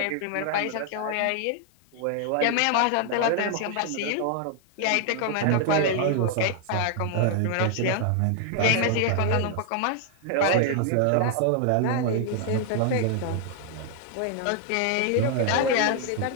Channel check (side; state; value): both; different; correlation 0.00